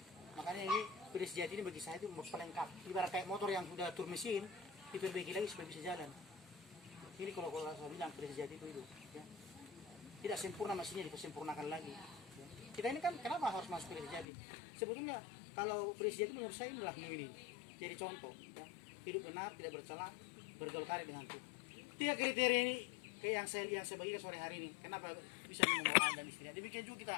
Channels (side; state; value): right; drops out; at 14.2 s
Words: Makanya ini kuda sejati ini bagi saya itu pelengkap. Ibarat kayak motor yang sudah tur mesin, diperbaiki lagi supaya bisa jalan. Ini kalau saya bilang kuda sejati itu ya. Tidak sempurna mesinnya, dipersempurnakan lagi. Ya. Kita ini kan kenapa harus masuk kuda sejati? Sebetulnya kalau kuda sejati menurut saya adalah ini. Jadi contoh, ya. Hidup benar, tidak bercela, bergaul karib dengan Tuhan. 3 kriteria ini kayak yang saya bagikan sore hari ini. Kenapa bisa membawa anak dan istri? Demikian juga kita